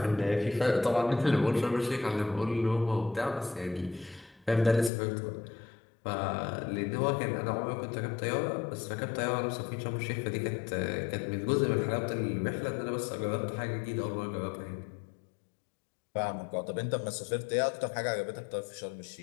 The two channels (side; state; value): right; drops out; at 4.9 s